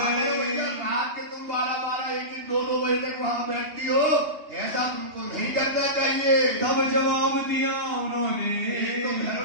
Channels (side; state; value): left; late; 2.8 ms